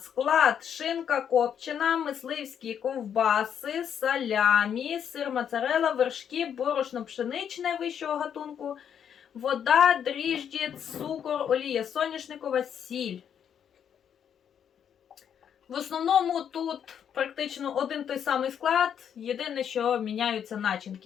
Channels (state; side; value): quieter; right; 8.5 dB